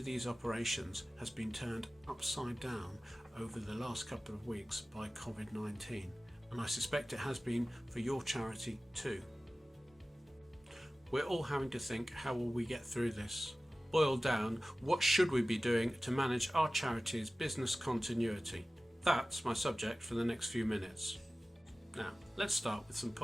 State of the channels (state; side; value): normal; both; correlation 0.96